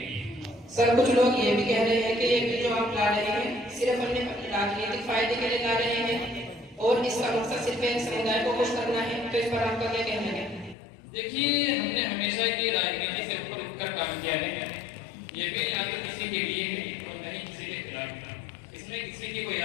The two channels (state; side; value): drops out; right; at 10.8 s